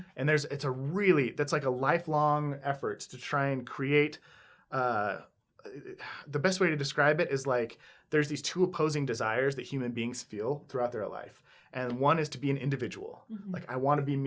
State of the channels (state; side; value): identical; both; correlation 1.00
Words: And that's like a lifelong effort to try and create the best way to describe it is like there's these two opposing desires that human beings feel throughout their life. And one is to be an individual. Mhm. Like I want to be